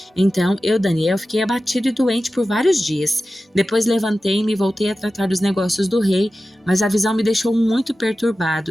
Então, eu, Daniel, fiquei abatido e doente por vários dias. Depois levantei-me e voltei a tratar dos negócios do rei, mas a visão me deixou muito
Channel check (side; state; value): both; normal; correlation 0.94